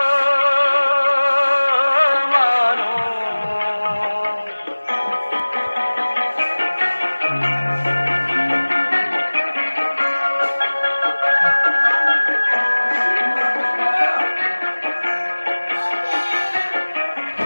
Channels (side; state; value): both; inverted; correlation -1.00